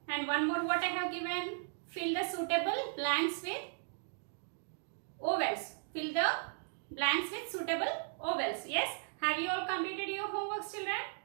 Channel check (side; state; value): left; silent; digital silence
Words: And one more what I have given. Fill the suitable blanks with ovals. Fill the blanks with suitable ovals. Yes. Have you all completed your homework, children?